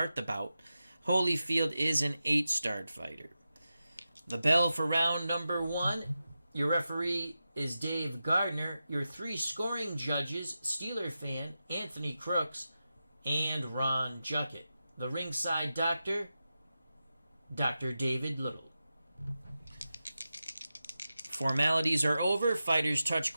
the bout. Holyfield is an 8-starred fighter. The bell for round number 1. Your referee is Dave Gardner. Your 3 scoring judges, Steeler fan, Anthony Crooks, and Ron Juckett. The ringside doctor, Dr. David Little. Formalities are over. Fighters touch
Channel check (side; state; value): both; inverted; correlation -0.91